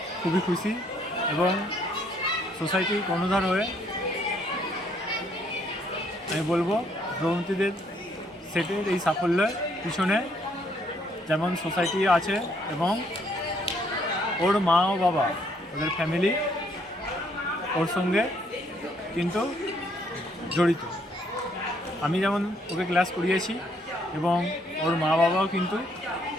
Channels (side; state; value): both; normal; correlation 0.68